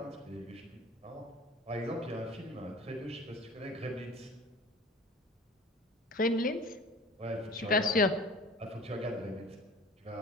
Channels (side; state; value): both; normal; correlation 0.43